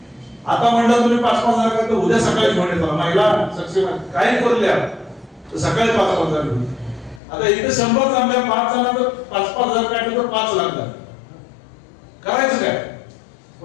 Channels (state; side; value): drops out; right; at 7.2 s